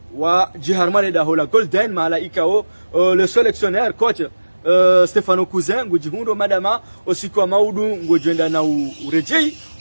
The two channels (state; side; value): inverted; both; correlation -1.00